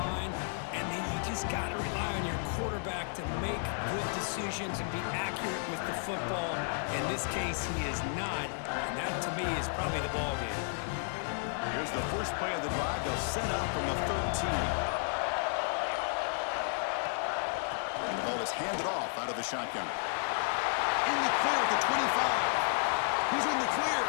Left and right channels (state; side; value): silent; right; 56 dB below the other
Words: And then you just got to rely on your quarterback to make good decisions and be accurate with the football. In this case, he is not. And that, to me, is probably the ball game. Here's the first play of the drive. They'll set up from the 13. And the ball is handed off out of the shotgun. In the clear at the 25. Who's in the clear?